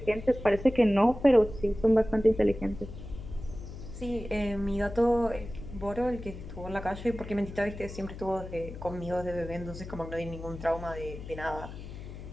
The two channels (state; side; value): noise; left; hum, 12 dB below the sound